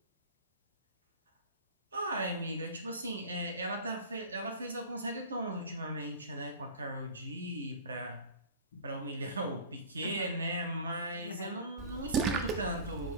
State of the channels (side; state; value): both; inverted; correlation -0.36